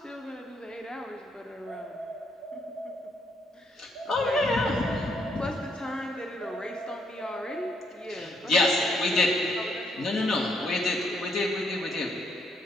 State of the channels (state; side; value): normal; both; correlation 0.73